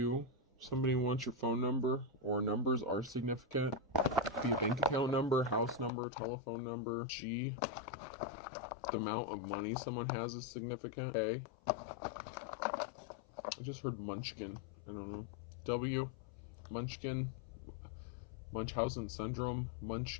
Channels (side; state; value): right; drops out; at 5.9 s